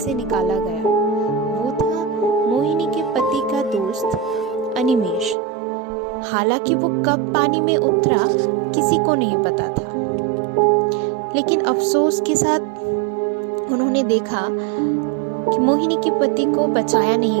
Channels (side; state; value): left; drops out; at 5.4 s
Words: निकाला गया। वो था मोहिनी के पति का दोस्त अनिमेश। हालांकि वो कब पानी में उतरा किसी को नहीं पता था, लेकिन अफसोस के साथ उन्होंने देखा कि मोहिनी के पति को बचाया